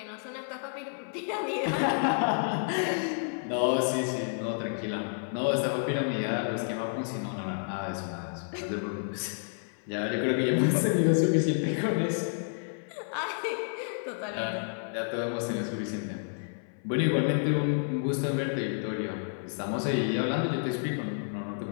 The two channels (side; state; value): right; silent; 58 dB below the other